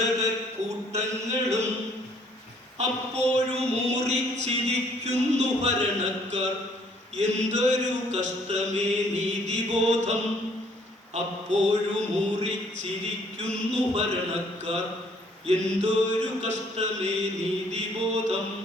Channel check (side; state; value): both; normal; correlation 0.62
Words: അപ്പോഴും മൂറിച്ചിരിക്കുന്നു ഭരണക്കാർ, എന്തൊരു കഷ്ടമേ നീതിബോധം. അപ്പോഴും മൂറിച്ചിരിക്കുന്നു ഭരണക്കാർ, എന്തൊരു കഷ്ടമേ നീതിബോധം.